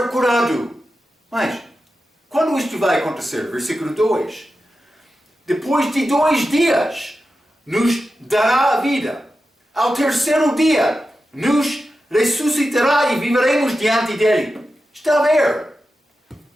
curado. Mas, quando isto vai acontecer? Versículo 2. Depois de 2 dias, nos dará a vida. Ao terceiro dia, nos ressuscitará e viveremos diante dele. Está a ver?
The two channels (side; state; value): both; normal; correlation 0.91